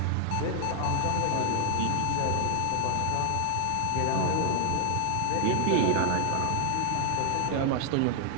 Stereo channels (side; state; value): both; different; correlation -0.01